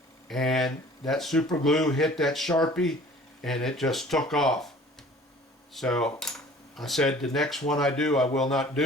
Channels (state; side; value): normal; both; correlation 0.49